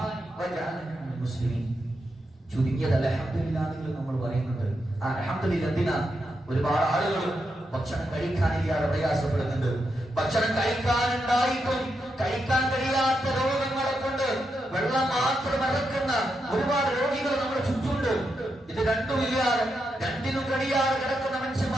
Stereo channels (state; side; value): normal; both; correlation 0.84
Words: വജഅലനി മിനൽ മുസ്ലിമീൻ. ചുരുങ്ങിയത് അൽഹംദുലില്ലാഹ് നിങ്ങൾ നമ്മൾ പറയുന്നുണ്ട്. ആ അൽഹംദുലില്ലാഹ് എന്തിനാ? ഒരുപാട് ആളുകൾ ഭക്ഷണം കഴിക്കാനില്ലാതെ പ്രയാസപ്പെടുന്നുണ്ട്. ഭക്ഷണം കഴിക്കാനുണ്ടായിട്ടും കഴിക്കാൻ കഴിയാത്ത രോഗങ്ങളെ കൊണ്ട് വെള്ളം മാത്രം ഇറക്കുന്ന ഒരുപാട് രോഗികൾ നമ്മുടെ ചുറ്റുമുണ്ട്. ഇത് രണ്ടുമില്ലാതെ രണ്ടിനും കഴിയാതെ കിടക്കുന്ന